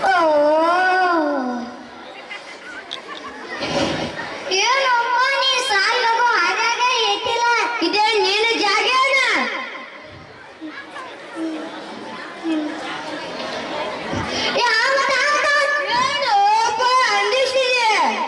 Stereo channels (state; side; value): identical; both; correlation 1.00